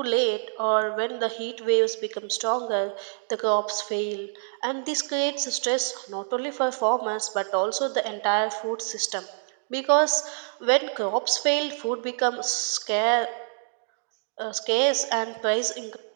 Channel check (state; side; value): silent; left; digital silence